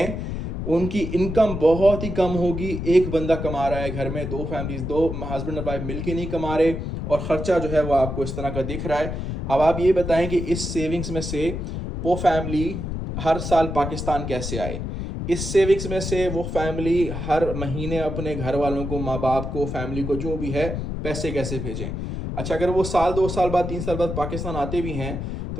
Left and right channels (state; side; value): noise; left; rumble, 5 dB below the sound